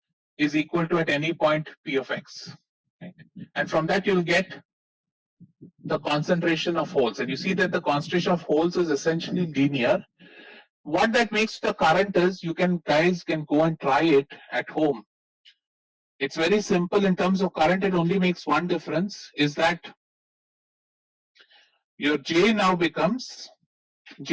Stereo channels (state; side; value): identical; both; correlation 1.00